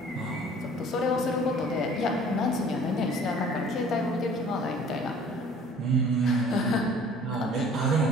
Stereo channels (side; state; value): both; normal; correlation 0.50